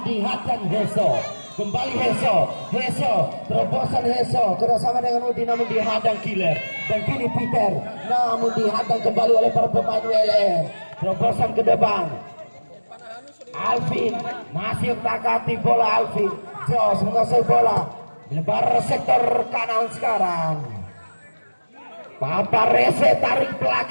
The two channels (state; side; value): inverted; both; correlation -1.00